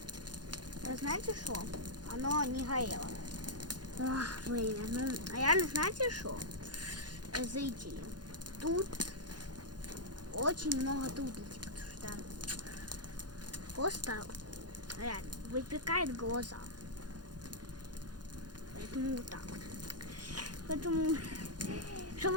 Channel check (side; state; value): left; late; 0.70 ms